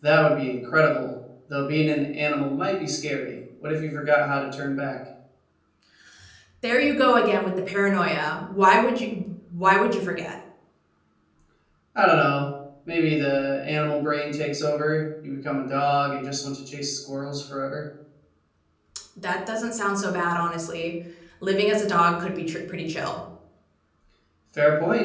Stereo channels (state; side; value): identical; both; correlation 1.00